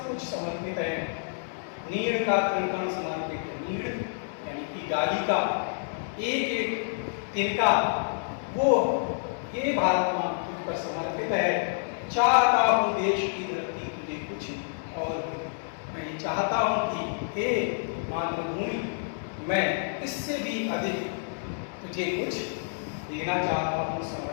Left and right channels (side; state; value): right; silent; digital silence